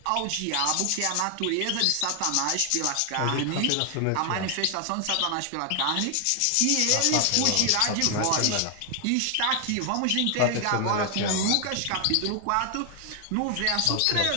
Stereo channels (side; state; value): both; different; correlation 0.00